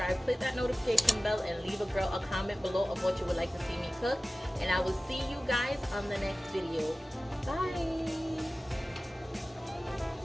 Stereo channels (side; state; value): both; normal; correlation 0.97